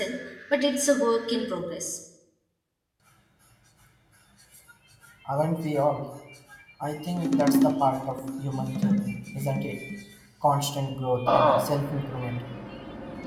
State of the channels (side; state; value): both; identical; correlation 1.00